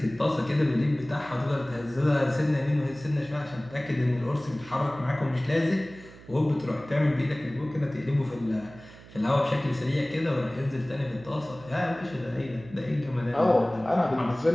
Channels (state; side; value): noise; right; hum, 20 dB below the sound